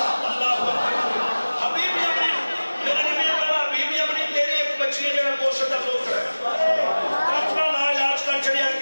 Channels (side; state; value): both; inverted; correlation -1.00